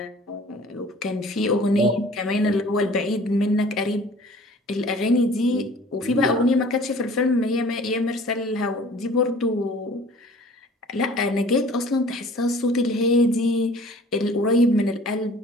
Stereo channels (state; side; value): normal; both; correlation 0.49